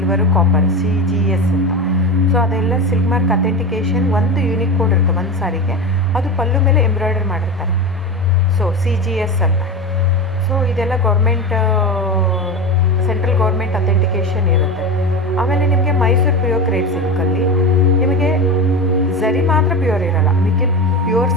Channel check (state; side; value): normal; both; correlation 0.23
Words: ಕಾಪರ್ CGS ಅಂತ. ಸೊ ಅದೆಲ್ಲ ಸಿಲ್ಕ್ ಮಾರ್ಕ್ ಅಥೆಂಟಿಕೇಷನ್ ಒಂದು ಯೂನಿಕ್ ಕೋಡ್ ಇರುತ್ತೆ ಒಂದು ಸಾರಿಗೆ. ಅದು ಪಲ್ಲು ಮೇಲೆ ಎಂಬ್ರಾಯ್ಡರ್ ಮಾಡಿರ್ತಾರೆ. ಸೊ CGS ಅಂತ. ಸೊ ಇದೆಲ್ಲ ಸೆಂಟ್ರಲ್ ಗೌರ್ಮೆಂಟ್ ಅಥೆಂಟಿಕೇಷನ್ ಇರುತ್ತೆ. ಆಮೇಲೆ ನಿಮಗೆ ಮೈಸೂರು ಪ್ಯೂರ್ ಕ್ರೇಪ್ ಸಿಲ್ಕಲ್ಲಿ ನಿಮಗೆ ಝರಿ ಮಾತ್ರ ಪ್ಯೂರ್ ಇರೋಲ್ಲ, ಮಿಕ್ಕಿ ಪ್ಯೂರ್